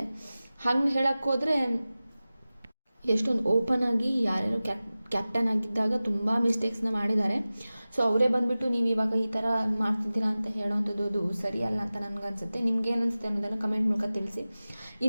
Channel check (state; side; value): inverted; both; correlation -0.96